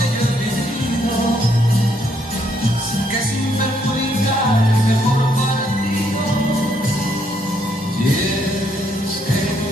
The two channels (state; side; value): normal; both; correlation 0.72